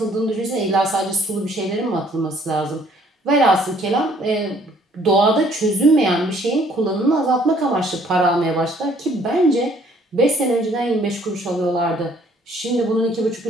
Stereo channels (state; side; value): normal; both; correlation 0.61